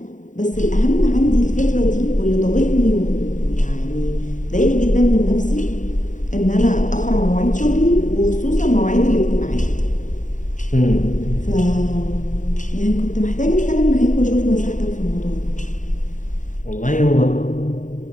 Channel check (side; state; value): right; late; 0.36 ms